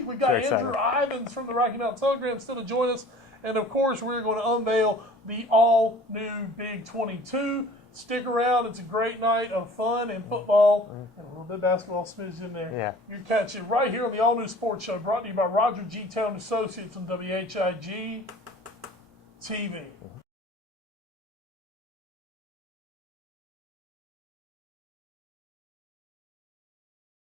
We've got Andrew Ivins from the Rocky Mountain Telegram still to join us. And, of course, we're going to unveil the all-new Big 22. Stick around. It's a great night of fun and football and a little bit of basketball smidge in there. Yeah. You catch it right here on the All New Sports Show, brought to you by Roger G. Taylor Associates on WHIG TV.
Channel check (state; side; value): normal; both; correlation 0.47